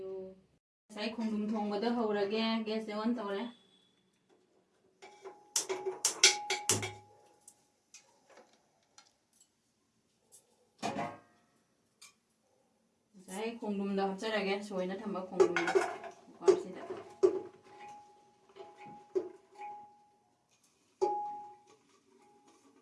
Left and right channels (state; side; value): identical; both; correlation 1.00